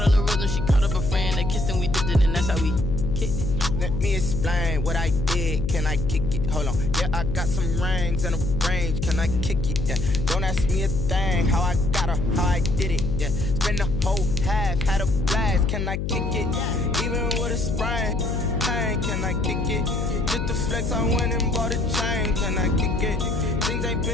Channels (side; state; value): left; noise; hum, 2 dB below the sound